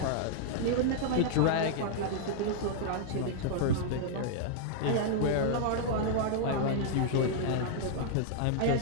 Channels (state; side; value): different; both; correlation -0.01